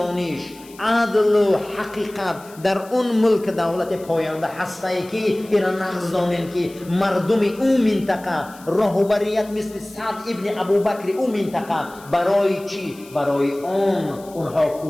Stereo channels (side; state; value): left; noise; hiss, 23 dB below the sound